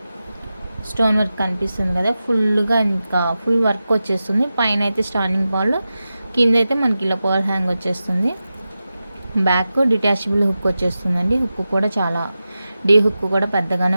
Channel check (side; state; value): both; inverted; correlation -0.93